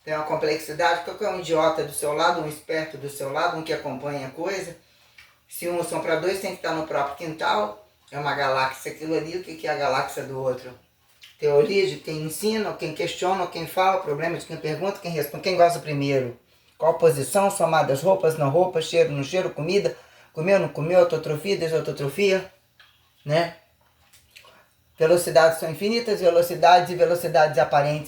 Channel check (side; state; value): both; identical; correlation 1.00